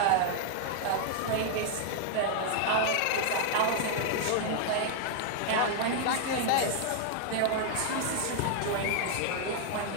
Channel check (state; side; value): different; both; correlation 0.00